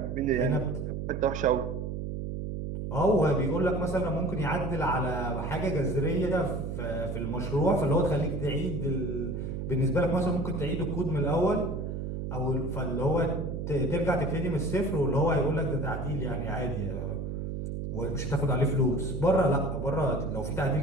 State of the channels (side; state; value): right; noise; hum, 4 dB below the sound